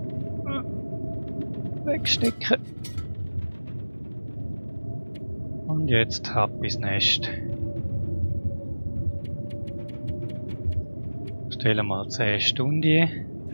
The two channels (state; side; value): inverted; both; correlation -1.00